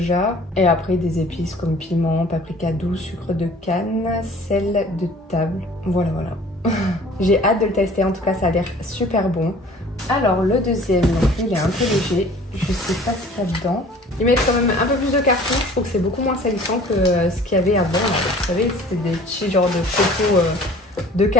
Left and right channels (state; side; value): normal; both; correlation 0.49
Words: Et après des épices comme piment, paprika doux, sucre de canne, sel de table. Voilà. J'ai hâte de le tester, en tout cas ça a l'air super bon. Alors le deuxième, donc il est un peu léger, je sais pas ce qu'il y a dedans. Ils mettent quand même un peu plus de carton, je trouve que c'est beaucoup moins salissant que ce qu'il y avait avant. Là. Vous savez, c'était des petits genres de photos de